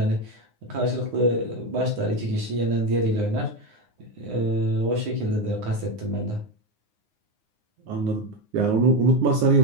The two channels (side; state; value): left; late; 9.7 ms